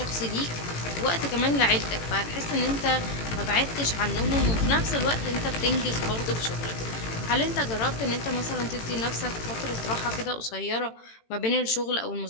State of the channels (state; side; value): late; right; 18 ms